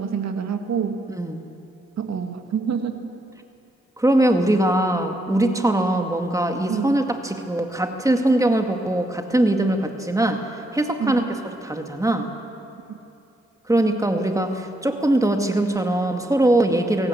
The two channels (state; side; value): normal; both; correlation 0.78